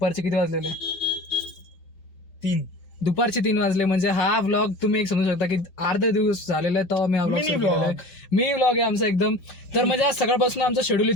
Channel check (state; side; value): late; right; 5.4 ms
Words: किती वाजलेले? 3. दुपारचे 3 वाजले. म्हणजे हा व्लॉग तुम्ही एक समजू शकता की अर्धा दिवस झालेला आहे तेव्हा मी हा ब्लॉग सुरू केलेला आहे. मी व्लॉग आहे आमचा एकदम. तर म्हणजे आज सकाळपासून आमचा शेड्यूल